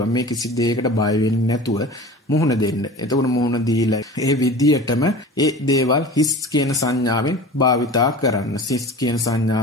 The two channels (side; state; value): both; normal; correlation 0.37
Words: මේ කිසි දෙයකට බය වෙන්නේ නැතුව මුහුණ දෙන්න. එතකොට මුහුණ දීලා ඒ විදියටම ඒ දේවල් හිස් කියන සංඥාවෙන් භාවිතා කරන්න. හිස් කියන